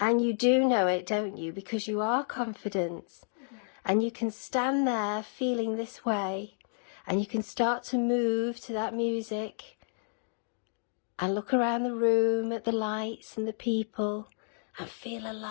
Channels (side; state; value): right; silent; digital silence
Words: you do know it, don't you? Because you are confident. Yeah. And you can stand there feeling this way, and you can start to move to that music and look around the room at the lights and the people and feel